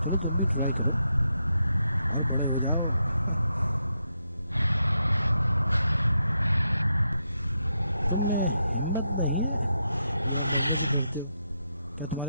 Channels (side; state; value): both; inverted; correlation -0.83